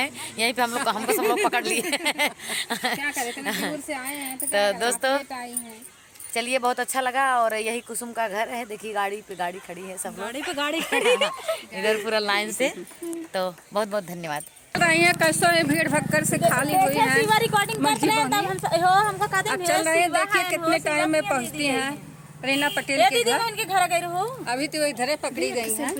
यहीं पे हमको सब लोग पकड़ लिए। क्या करें, दूर से आए हैं तो दोस्तों चलिए, बहुत अच्छा लगा। और यही कुसुम का घर है, देखिए गाड़ी पे गाड़ी खड़ी है, सब लोग गाड़ी खड़ी इधर पूरा लाइन से। तो बहुत बहुत धन्यवाद। कैसे भीड़ भक्कर से खाली हुई है। अब चल रहे हैं, देखिए कितने टाइम में पहुँचती हैं रीना पटेल के घर गई हो। अभी तो इधर पकड़ी गई है,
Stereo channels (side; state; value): both; identical; correlation 1.00